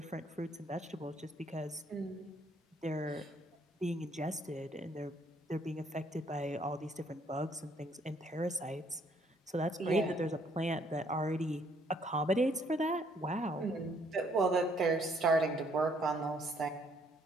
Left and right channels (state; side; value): normal; both; correlation 0.66